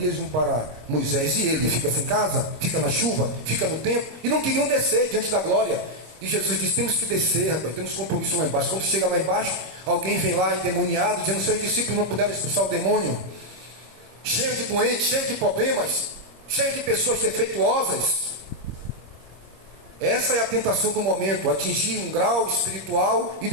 uma para Moisés. E ele fica sem casa, fica na chuva, fica no tempo, e não queriam descer diante da glória. E Jesus disse, temos que descer, rapaz, temos compromisso lá embaixo. Quando chega lá embaixo, alguém vem lá endemoniado, dizendo, seus discípulos não puderam expulsar o demônio, cheio de doentes, cheio de problemas, cheio de pessoas defeituosas. Essa é a tentação do momento, atingir um grau espiritual e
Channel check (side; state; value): left; late; 26 ms